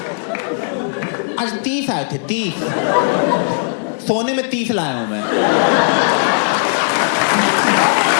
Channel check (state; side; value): silent; right; 64 dB below the other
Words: आज 30 आए थे, 30। सोने में 30 लाया हूं मैं।